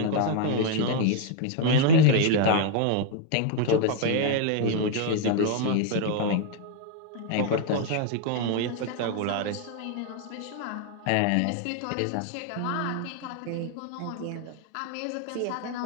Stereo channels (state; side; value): different; both; correlation 0.00